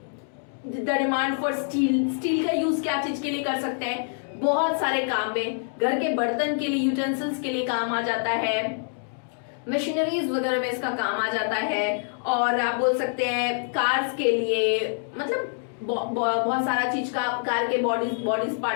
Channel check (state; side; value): silent; right; digital silence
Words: the demand for steel का यूज क्या चीज के लिए कर सकते हैं, बहुत सारे काम में, घर के बर्तन के लिए, यूटेंसिल्स के लिए काम आ जाता है, मशीनरीज वगैरह में इसका काम आ जाता है, और आप बोल सकते हैं कार्स के लिए, मतलब बहुत सारा चीज का, कार के बॉडीज